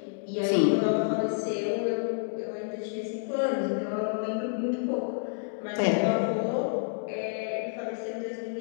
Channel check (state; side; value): silent; right; digital silence